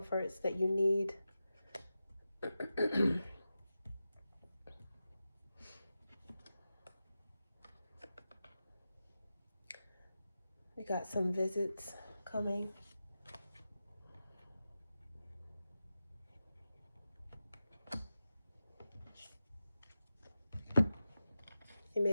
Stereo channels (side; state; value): both; inverted; correlation -0.92